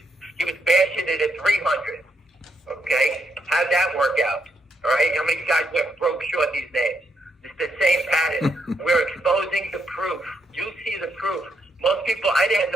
was bashing it at 300. Okay? How'd that work out? All right? How many guys went broke short these days? It's the same pattern. We're exposing the proof. You see the proof. Most people, I didn't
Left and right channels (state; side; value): normal; both; correlation 0.78